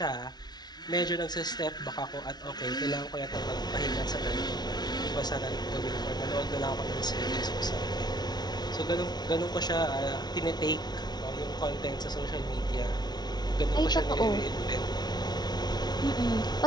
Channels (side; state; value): right; late; 0.20 ms